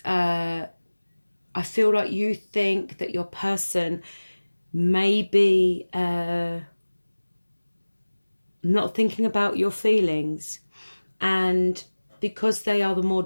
I feel like you think that your person may be not thinking about your feelings, and because they are the more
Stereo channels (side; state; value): both; inverted; correlation -1.00